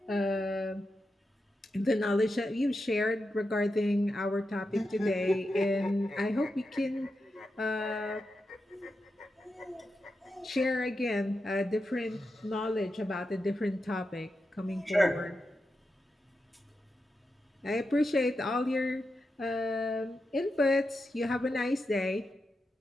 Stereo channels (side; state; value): both; normal; correlation 0.88